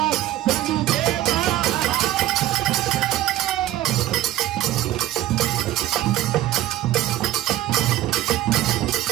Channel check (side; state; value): left; quieter; 14.4 dB